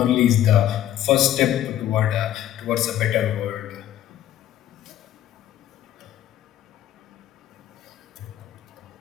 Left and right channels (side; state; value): right; quieter; 11.8 dB